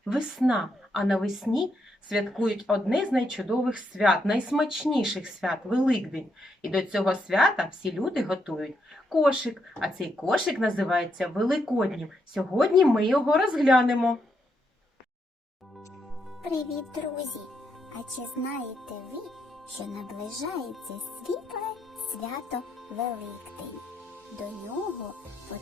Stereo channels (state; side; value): normal; both; correlation 0.79